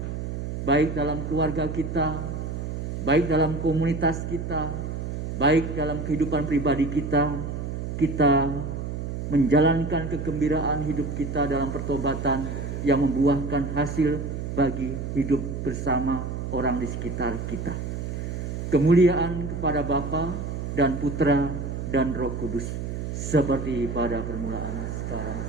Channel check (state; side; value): noise; right; hum, 4 dB below the sound